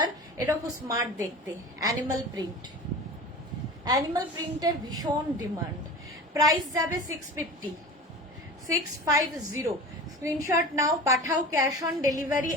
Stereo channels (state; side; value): normal; both; correlation 0.34